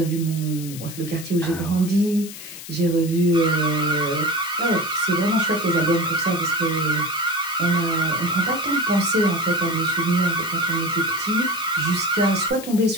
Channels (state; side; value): noise; left; hiss, 13 dB below the sound